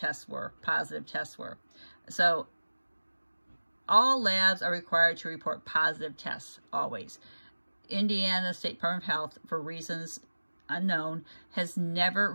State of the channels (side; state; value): both; inverted; correlation -1.00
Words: were, positive tests were. So all labs are required to report positive tests, always. Indiana State Department of Health, for reasons unknown, has never